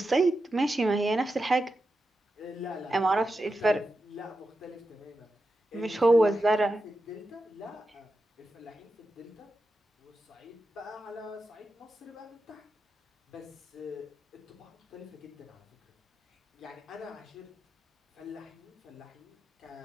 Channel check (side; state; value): both; normal; correlation 0.90